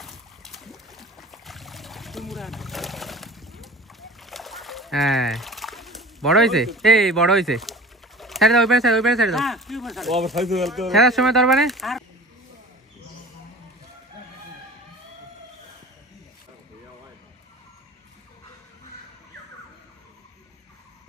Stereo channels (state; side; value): normal; both; correlation 0.40